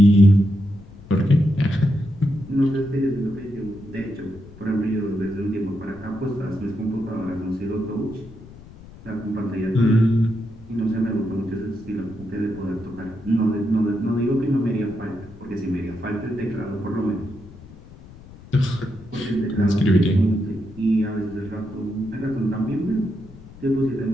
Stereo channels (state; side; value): noise; left; rumble, 19 dB below the sound